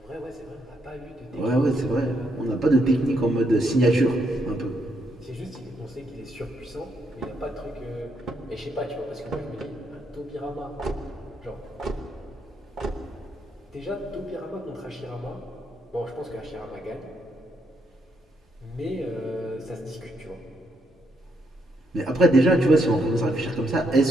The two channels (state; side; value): normal; both; correlation 0.76